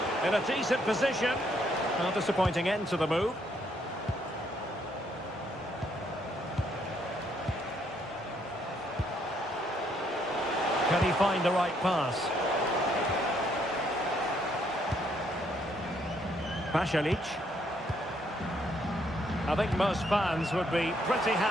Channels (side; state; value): both; normal; correlation 0.71